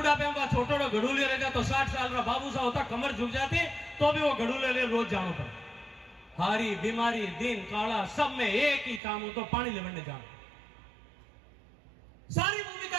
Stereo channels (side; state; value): left; drops out; at 9.0 s